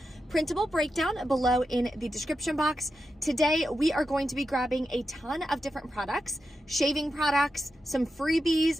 printable breakdown below in the description box. Today, we are going to be grabbing a ton of different products, shaving products, some freebies,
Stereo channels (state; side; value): normal; both; correlation 0.89